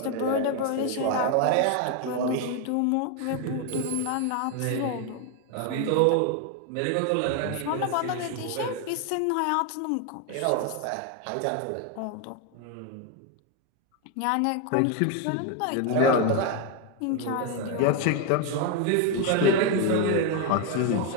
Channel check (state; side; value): different; both; correlation 0.01